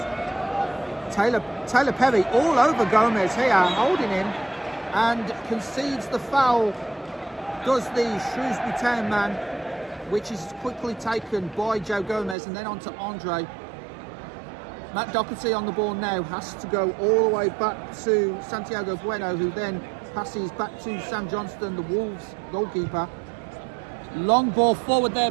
Taylor Perry all over Gomez here, holding him, and concedes the foul. Does the Shrewsbury Town man, which is quickly taken by Joe Gomez, and then on to Andre. Matt Doherty on the ball now, has to go all the way back to Santiago Bueno, who then passes back to Sam Johnston, the Wolves goalkeeper. Long ball forward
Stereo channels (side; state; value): left; drops out; at 12.4 s